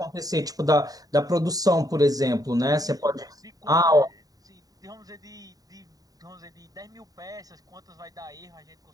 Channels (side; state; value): left; late; 0.18 ms